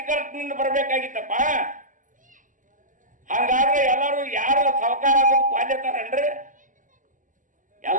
ಬರ್ಬೇಕಾಗಿತ್ತಪ್ಪ. ಹಂಗಾದ್ರೆ ಎಲ್ಲರೂ ಯಾರು ಸಾವುಕಾರ ಆಗೋದು ಕ್ವಾಲ್ಯತಾರನ್ರಿ?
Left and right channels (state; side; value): late; left; 0.38 ms